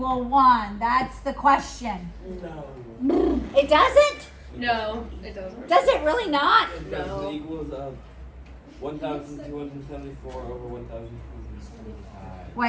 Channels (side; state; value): both; identical; correlation 1.00